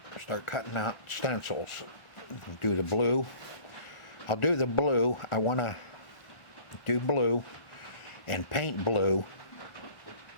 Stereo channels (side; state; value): right; late; 1.4 ms